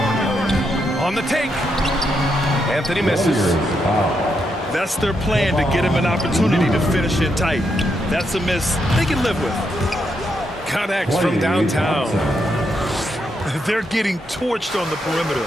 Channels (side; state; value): both; normal; correlation 0.80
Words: On the take. Anthony misses. That's their plan, to get him an opportunity to finish it tight. That's a miss they can live with. Connects from downtown. They're getting torched on the perimeter.